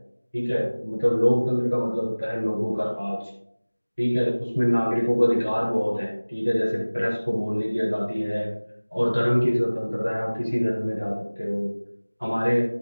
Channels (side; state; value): both; inverted; correlation -1.00